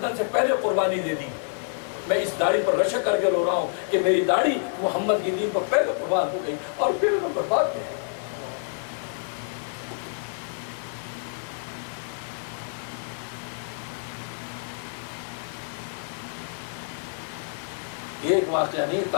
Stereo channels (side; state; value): right; silent; 60 dB below the other